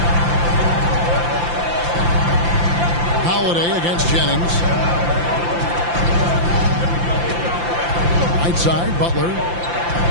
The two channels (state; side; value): late; left; 5.8 ms